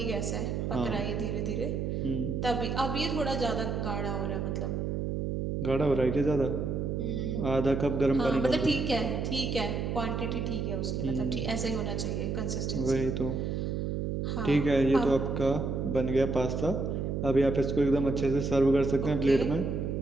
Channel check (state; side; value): noise; right; hum, 1 dB below the sound